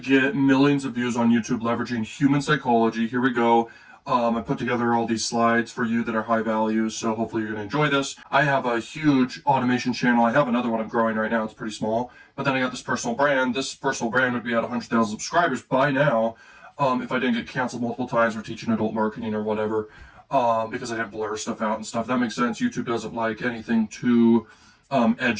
millions of views on YouTube leveraging human psychology. Here we go. I put together all these slides for you that are high value, so hopefully you're going to enjoy this. I have a huge automation channel. I have another one I'm growing right now. It's pretty small. But then I got this personal brand. This personal brand would be at 100,000 subscribers by now if I didn't get canceled multiple times for teaching adult marketing or whatever, because I didn't blur stuff out and stuff. That makes sense. YouTube doesn't like anything too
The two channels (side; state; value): both; identical; correlation 1.00